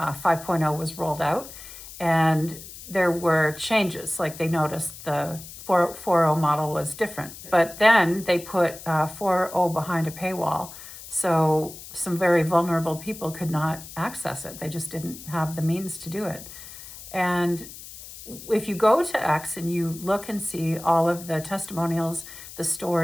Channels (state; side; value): noise; left; hiss, 15 dB below the sound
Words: was rolled out, and there were changes. Like, they noticed the 4.0 model was different, but then they put 4.0 behind a paywall, so some very vulnerable people could not access it. They just didn't have the means to do it. And if you go to X and you look and see all of the testimonials, the